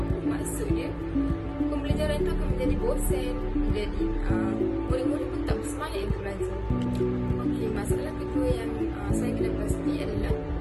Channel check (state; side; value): identical; both; correlation 1.00